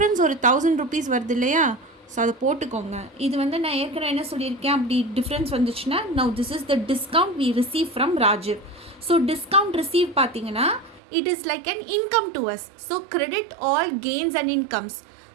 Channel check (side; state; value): left; drops out; at 11.0 s